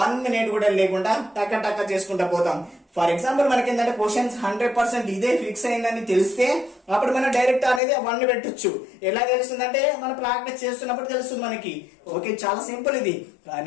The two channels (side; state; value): right; drops out; at 7.8 s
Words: మినిట్ కూడా లేకుండా టక్క టక్క చేసుకుంటా పోతాం. ఫర్ ఎగ్జాంపుల్ మనకి ఏంటంటే క్వశ్చన్స్ 100% ఇదే ఫిక్స్ అయిందని తెలిస్తే అప్పుడు మనం డైరెక్ట్ అనేది 1 పెట్టొచ్చు. ఎలా తెలుస్తుందంటే మనం ప్రాక్టీస్ చేస్తున్నప్పుడు తెలుస్తుంది మనకి. ఓకే చాలా సింపుల్ ఇది.